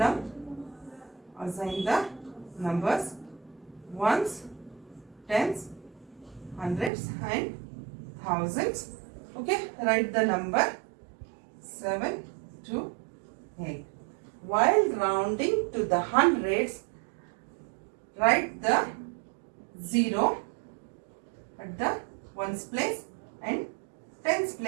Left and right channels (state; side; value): drops out; left; at 6.9 s